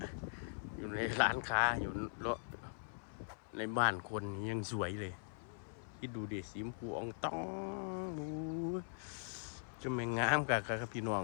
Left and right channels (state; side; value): silent; right; 50 dB below the other